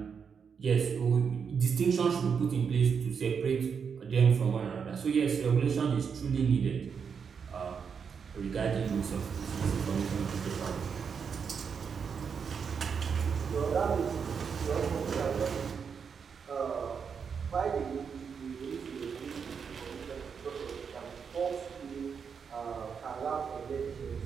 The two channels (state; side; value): quieter; left; 6.4 dB